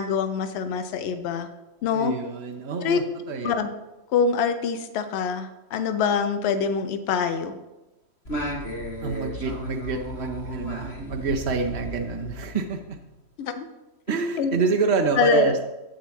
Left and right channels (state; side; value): late; right; 3.1 ms